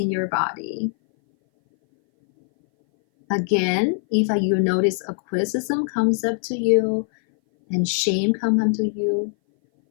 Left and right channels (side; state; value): right; silent; 60 dB below the other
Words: your body. Again, if you notice a criticism comes up to you and shame comes up to you,